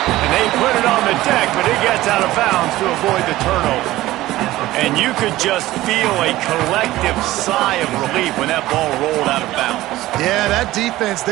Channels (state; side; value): quieter; left; 16.5 dB